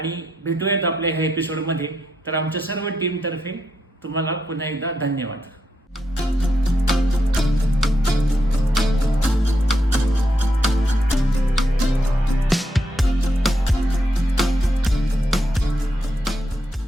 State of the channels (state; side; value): normal; both; correlation 0.81